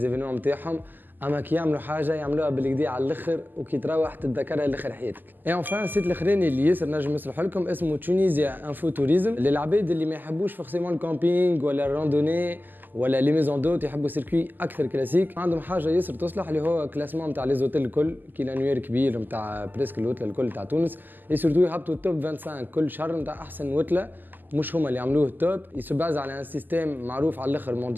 نتاعهم. اما كي يعملوا حاجه يعملوها بالكدا على الاخر وكي تروح تتذكرها لاخر حياتك. اي انفان السيت الاخراني اللي ياسر نجم نصلح لكم اسمه تونيزيا انفو توريزم للعباد اللي ما يحبوش فورسيمون الكامبينغ ولا الراندوني ولا لي ميزون دوت يحبوا سيركوي اكثر كلاسيك. عندهم حاجه ياسر تصلح اللي هو كلاسمون نتاع لي زوتيل الكل كي لانوير كبير نتاع بريسك الوتله الكل تاع تونس. اي سورتو يهبطوا التوب 25 كل شهر نتاع احسن وتله. مش هما اللي عملوه التوب يسباز على ان سيستيم معروف على الاخر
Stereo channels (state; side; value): late; left; 0.088 ms